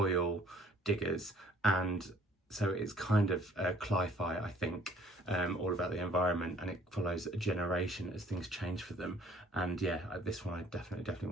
diggers, and so it's kind of cli-fi, I think, all about the environment, and it follows a generation as things change for them. And yeah, this one I definitely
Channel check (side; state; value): both; normal; correlation 0.58